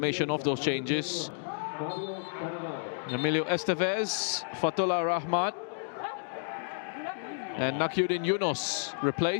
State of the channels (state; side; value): silent; right; digital silence